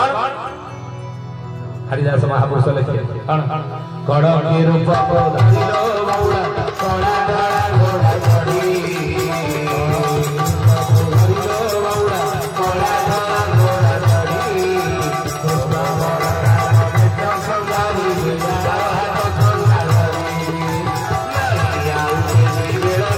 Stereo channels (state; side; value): identical; both; correlation 1.00